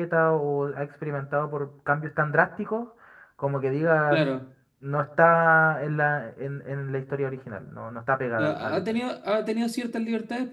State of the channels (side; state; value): both; identical; correlation 1.00